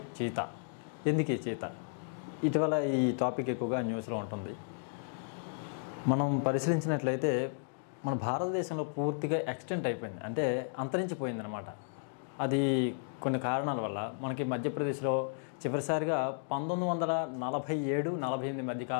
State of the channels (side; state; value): right; silent; digital silence